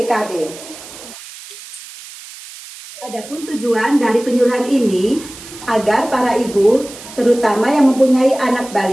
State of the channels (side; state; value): right; noise; hiss, 16 dB below the sound